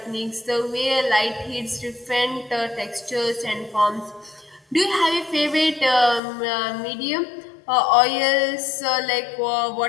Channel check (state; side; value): drops out; right; at 6.2 s